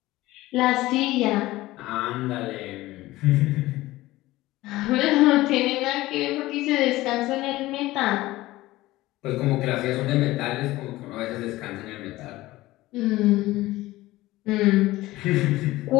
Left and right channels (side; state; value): right; quieter; 17.8 dB